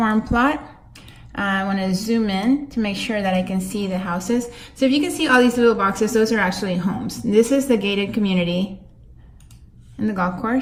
plot. I want to zoom in to make sure that I can see the houses. So if you can see all these little boxes, those are actually homes. This is the gated community and the golf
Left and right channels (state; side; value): identical; both; correlation 1.00